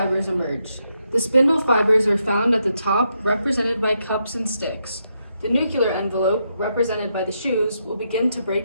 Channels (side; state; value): both; inverted; correlation -0.81